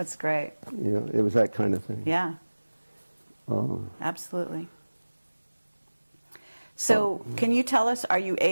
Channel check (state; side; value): inverted; both; correlation -1.00